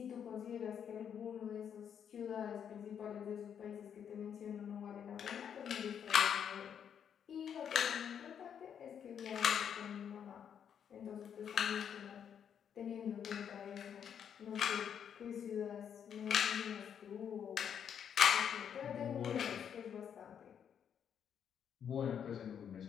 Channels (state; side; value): quieter; right; 8.3 dB